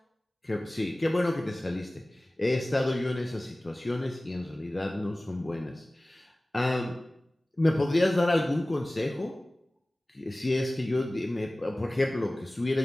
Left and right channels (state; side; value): normal; both; correlation 0.98